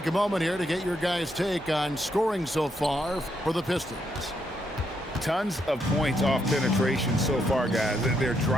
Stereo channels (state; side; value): normal; both; correlation 0.77